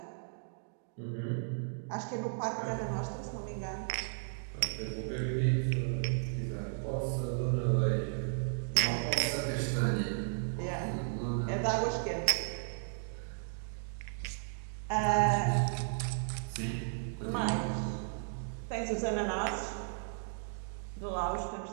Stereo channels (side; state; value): left; silent; digital silence